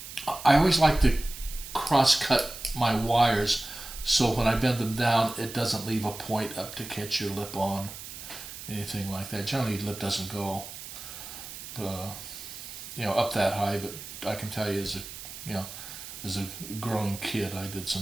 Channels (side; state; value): right; noise; hiss, 11 dB below the sound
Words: I always like to cross-cut my wires so when I bend them down, it doesn't leave a point up to catch your lip on, anything like that. Generally, lip doesn't go, up that high. But I can tell you, as a growing kid, I did